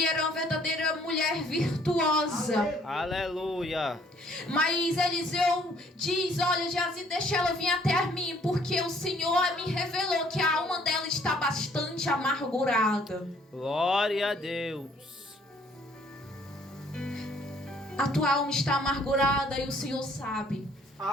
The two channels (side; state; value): both; normal; correlation 0.62